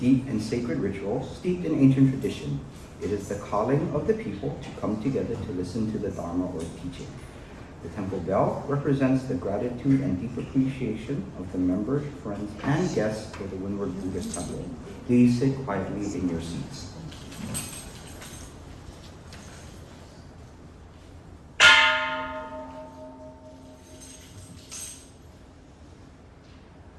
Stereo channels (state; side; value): identical; both; correlation 1.00